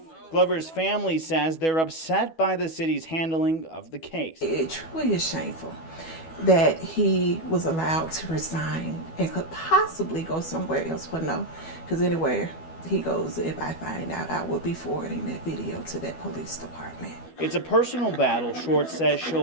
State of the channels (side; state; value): right; late; 12 ms